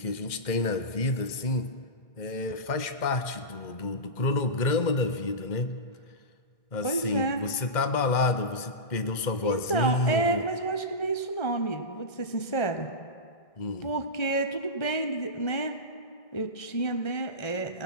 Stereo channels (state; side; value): late; right; 1.6 ms